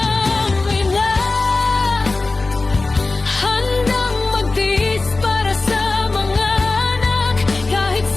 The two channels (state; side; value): quieter; right; 3.5 dB